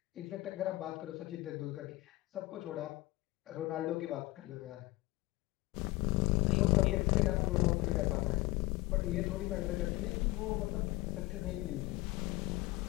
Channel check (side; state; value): right; quieter; 20.3 dB